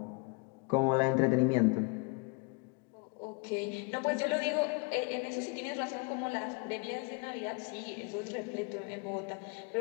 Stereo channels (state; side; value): quieter; right; 31.1 dB